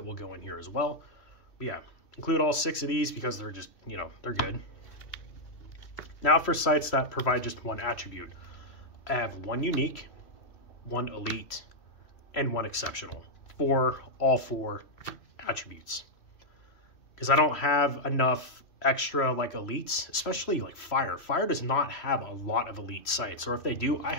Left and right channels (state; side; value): late; right; 3.0 ms